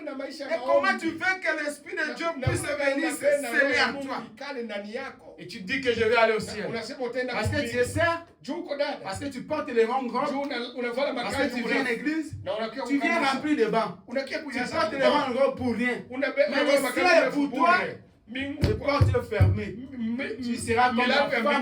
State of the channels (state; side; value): identical; both; correlation 1.00